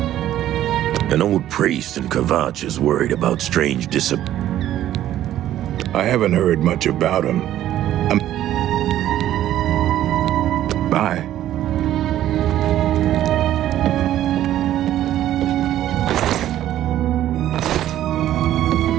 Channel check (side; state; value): left; quieter; 12.5 dB